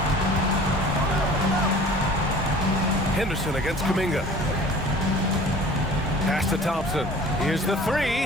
Henderson against Kuminga. Pass to Thompson. Here's the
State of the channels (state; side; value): normal; both; correlation 0.45